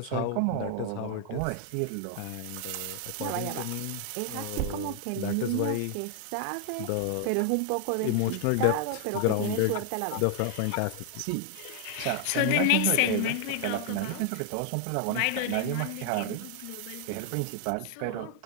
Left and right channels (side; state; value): both; different; correlation 0.00